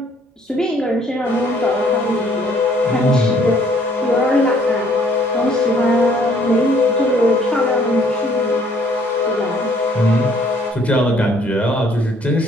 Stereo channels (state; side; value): normal; both; correlation 0.62